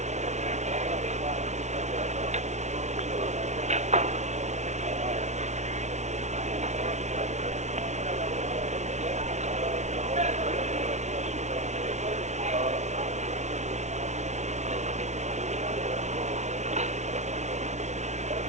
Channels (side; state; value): left; late; 0.33 ms